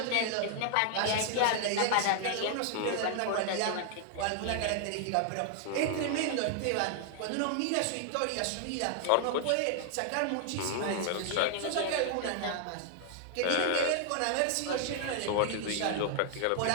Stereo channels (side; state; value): both; different; correlation 0.00